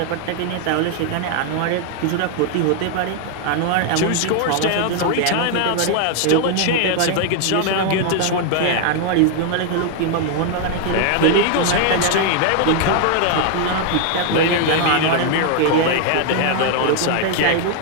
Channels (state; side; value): different; both; correlation 0.00